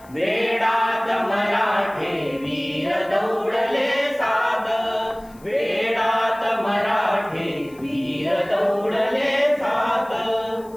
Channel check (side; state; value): left; noise; hiss, 27 dB below the sound